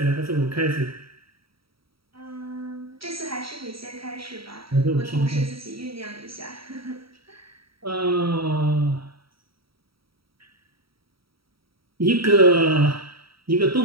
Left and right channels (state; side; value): late; left; 0.75 ms